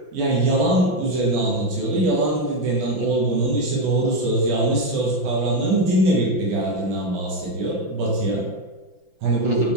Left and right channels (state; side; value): late; left; 5.9 ms